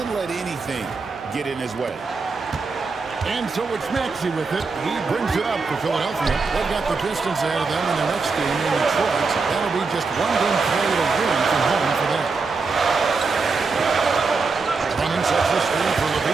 let anything get in his way. And so it's Maxey with it. He brings it up for Philadelphia. They've got the Pistons ahead of them in their next game in Detroit. That'll be just one game played a win from home for them. Running sets the screen for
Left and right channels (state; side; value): quieter; left; 4.4 dB